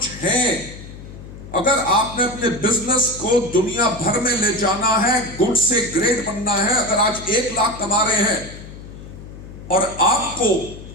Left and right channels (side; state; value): left; noise; hum, 14 dB below the sound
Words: हैं। अगर आपने अपने बिजनेस को दुनिया भर में ले जाना है, गुड से ग्रेट बनना है, अगर आज 1 लाख कमा रहे हैं और आपको